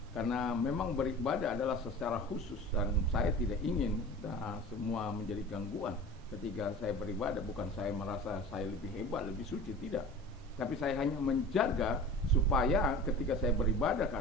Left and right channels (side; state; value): both; normal; correlation 0.38